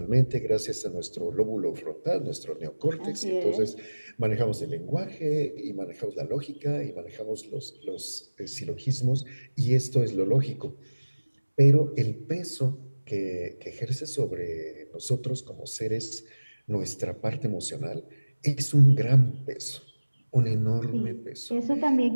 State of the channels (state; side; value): inverted; both; correlation -1.00